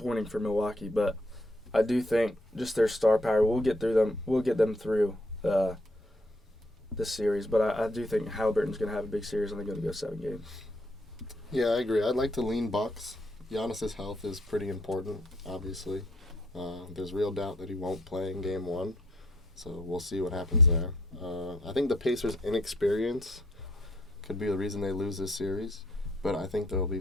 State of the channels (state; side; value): normal; both; correlation 0.68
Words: for Milwaukee. But I do think just their star power will get them through this series. But I do think Halliburton's going to have a big series, and they're going to go 7 games. Yeah, I agree. I'd like to lean Bucks. Giannis' health is pretty important, obviously. There's real doubt that he won't play in Game 1, so we'll see what happens there. I think the Pacers' inexperience could be the reason they lose this series, but I think there will be